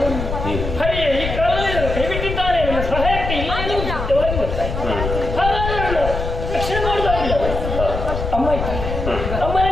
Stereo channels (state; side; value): noise; left; rumble, 4 dB below the sound